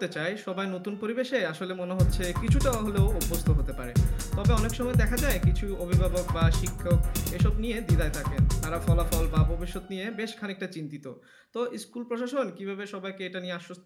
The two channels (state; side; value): identical; both; correlation 1.00